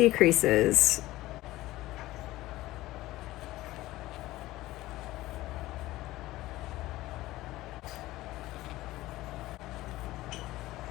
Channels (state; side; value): quieter; right; 17.2 dB